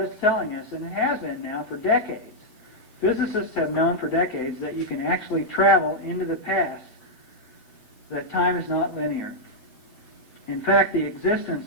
it's telling us, and it has been now for decades. Physicists have known for decades that you can actually travel into the past, that time is not linear. In fact, the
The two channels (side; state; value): right; late; 7.9 ms